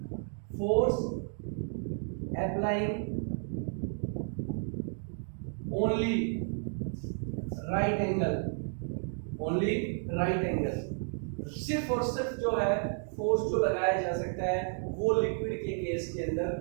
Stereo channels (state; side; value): silent; left; 56 dB below the other